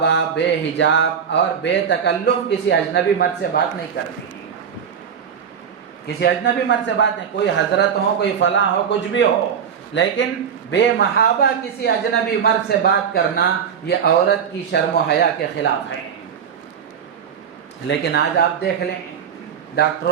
بے حجاب اور بے تکلف کسی اجنبی مرد سے بات نہیں کرتی، کسی اجنبی مرد سے بات نہیں، کوئی حضرت ہو، کوئی فلاں ہو، کچھ بھی ہو، لیکن بے محابہ کسی اجنبی مرد سے بات کرنا یہ عورت کی شرم و حیا کے خلاف ہے۔ لیکن آج آپ دیکھ لیں،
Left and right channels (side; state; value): left; quieter; 7.5 dB